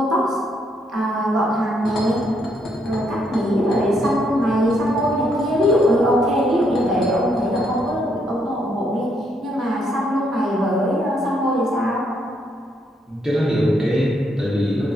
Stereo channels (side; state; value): both; normal; correlation 0.74